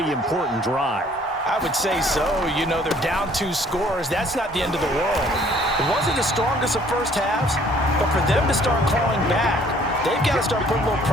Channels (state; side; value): normal; both; correlation 0.58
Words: important drive. I would say so. You know, they're down 2 scores. That's not the end of the world. It wasn't the strongest of first halves, but for them to start clawing back, they've got to start putting a little